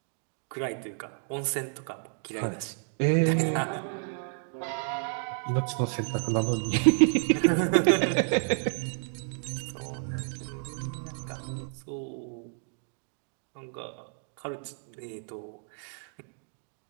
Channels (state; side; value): silent; left; 58 dB below the other